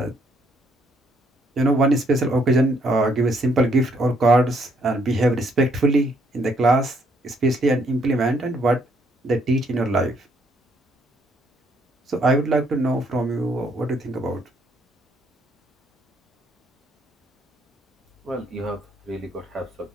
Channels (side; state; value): both; normal; correlation 0.70